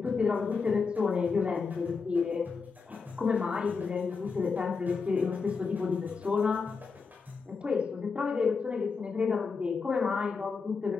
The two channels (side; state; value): right; quieter; 5.0 dB